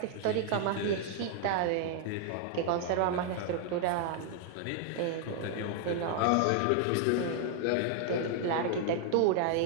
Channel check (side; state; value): both; different; correlation 0.00